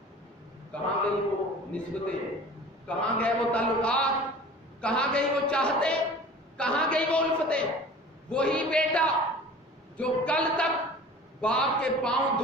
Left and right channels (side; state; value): both; normal; correlation 0.43